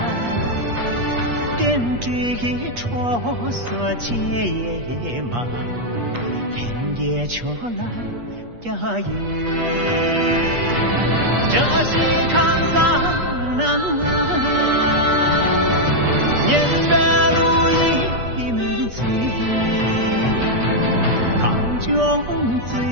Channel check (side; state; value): left; late; 8.4 ms